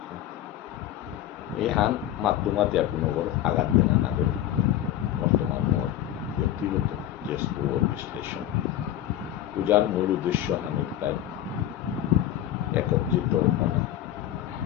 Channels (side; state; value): right; quieter; 12.4 dB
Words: এহান মাধ্যমাতে কোনো বড় আঘাত দেনা না করি বর্তমান মোর ব্যক্তিগত যে স্থূল বিশ্লেষণ পূজার মূল উদ্দেশ্য হানুতাই একত্রিত